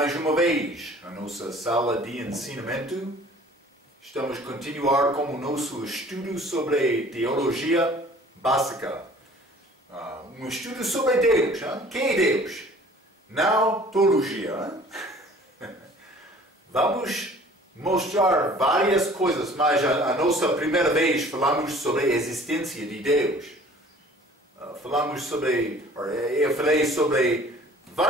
uma vez à nossa sala de ensinamento. Estamos a continuar com o nosso estudo sobre teologia básica. Um estudo sobre Deus. Quem é Deus? Não teologia. Vamos mostrar várias coisas, mas a nossa primeira vez falamos sobre a existência de Deus. Eu falei sobre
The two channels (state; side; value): normal; both; correlation 0.50